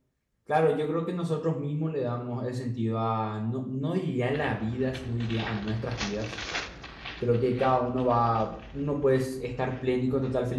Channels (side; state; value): both; identical; correlation 1.00